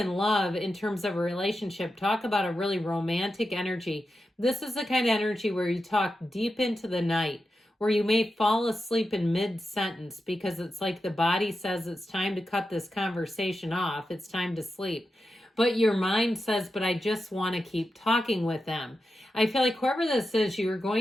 in love in terms of a relationship, talk about a really romantic energy. This is the kind of energy where you talk deep into the night, where you may fall asleep in mid-sentence because it's like the body says it's time to cut this conversation off. It's time to sleep. But your mind says, but I just want to keep talking with them. I feel like whoever this is, you're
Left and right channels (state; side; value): normal; both; correlation 0.90